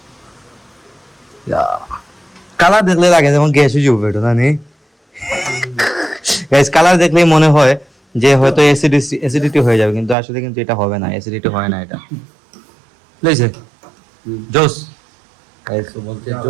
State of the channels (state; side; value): drops out; left; at 10.2 s